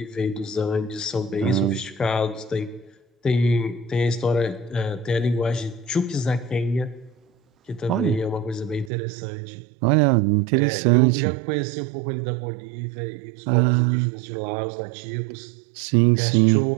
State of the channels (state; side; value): drops out; left; at 8.9 s